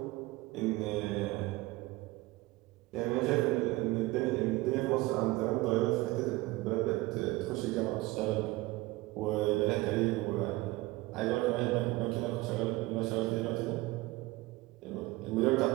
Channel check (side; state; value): left; quieter; 20.3 dB